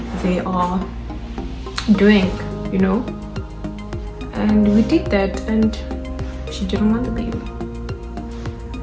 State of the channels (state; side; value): identical; both; correlation 1.00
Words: they are doing, you know. And we did that, and she didn't want the baby.